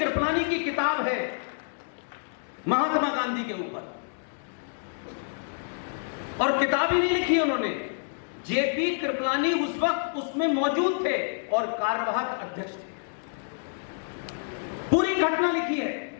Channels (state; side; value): silent; right; digital silence